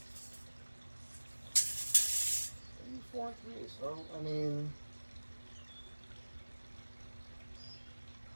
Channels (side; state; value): both; inverted; correlation -1.00